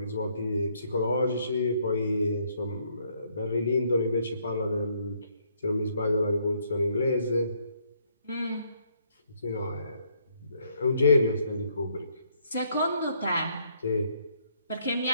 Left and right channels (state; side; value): inverted; both; correlation -0.69